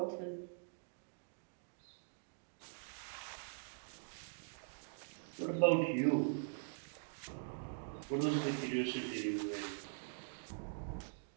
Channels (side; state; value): left; silent; digital silence